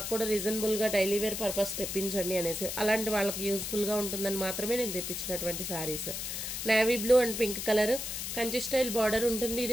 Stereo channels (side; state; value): left; noise; hiss, 4 dB below the sound